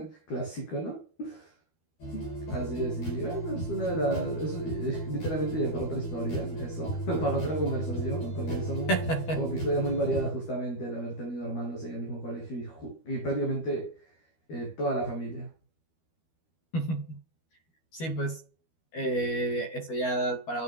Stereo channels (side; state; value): right; late; 12 ms